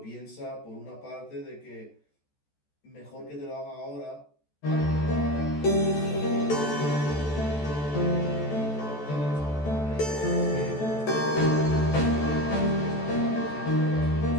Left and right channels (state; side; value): late; right; 14 ms